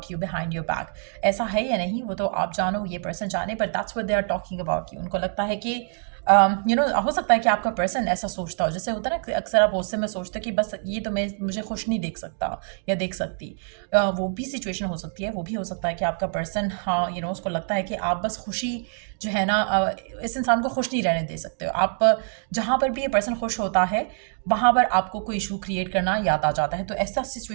you behind your back. ऐसा है या नहीं वो तो आप जानो, ये पर्सन जाने, but that's what they are talking about you. उनको लगता है कि हो सकता है कि आपका पर्सन ऐसा सोचता हो, जैसे होता है ना कि अक्सर आप गुस्से में सोचते हो कि बस ये तो मुझे खुश नहीं देख सकता या देख सकती। वो भी सिचुएशन हो सकती है। वो भी हो सकता है कि आपका पर्सन, हाँ उसको लगता है कि आप बस खुशी जो है ना, इस इंसान को खुश नहीं रहने दे सकते हो। आप जहाँ पर भी ये पर्सन खुश होता है वहाँ पर आपको कोई इशू क्रिएट करना याद आ जाता है। तो ऐसा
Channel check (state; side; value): silent; left; 56 dB below the other